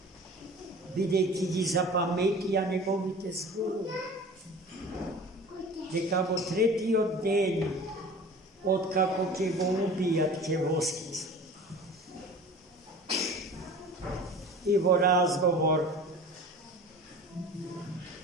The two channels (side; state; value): both; normal; correlation 0.40